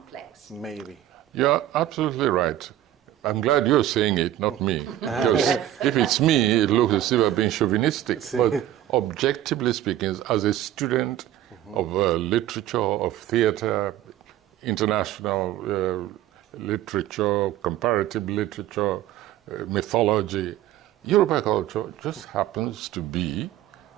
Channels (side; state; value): left; quieter; 12.8 dB